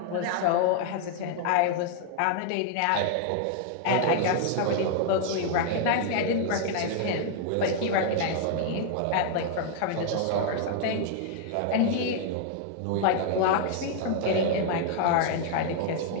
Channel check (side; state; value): both; different; correlation 0.00